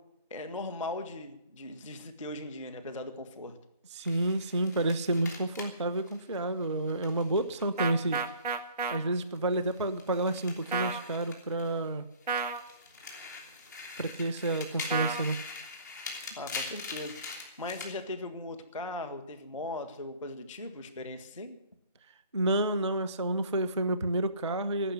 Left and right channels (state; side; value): inverted; both; correlation -0.53